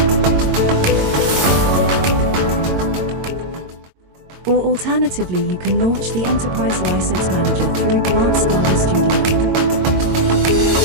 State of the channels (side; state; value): left; late; 22 ms